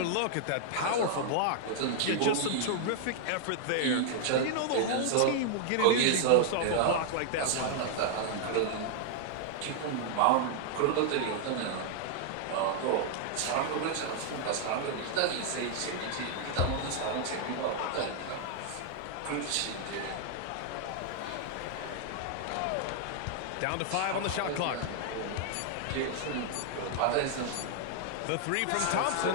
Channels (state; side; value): different; both; correlation 0.00